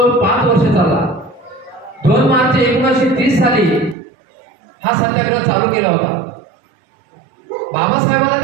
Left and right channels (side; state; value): left; drops out; at 4.0 s